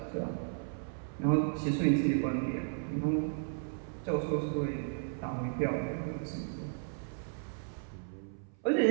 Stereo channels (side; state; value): left; silent; 55 dB below the other